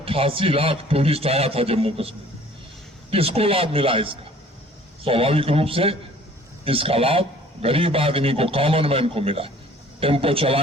टूरिस्ट आया था जम्मू कश्मीर। किसको लाभ मिला इसका? स्वाभाविक रूप से इसका लाभ गरीब आदमी को, कॉमन मैन को मिला। टेम्पो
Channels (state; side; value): normal; both; correlation 0.53